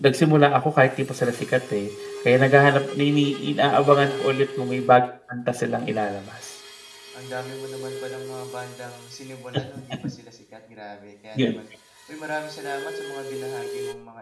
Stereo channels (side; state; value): both; identical; correlation 1.00